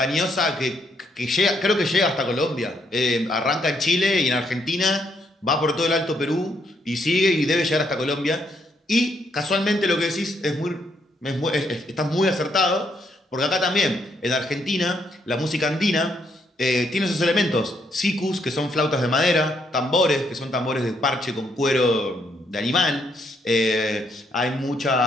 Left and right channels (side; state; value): both; normal; correlation 0.74